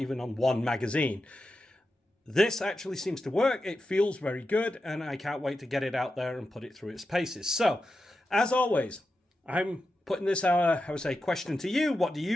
on one magazine. This actually seems to work. It feels very good, and I can't wait to get it out there and put it through its paces. So, as always, I'm putting this, I would say, question to you. What do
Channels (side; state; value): both; normal; correlation 0.90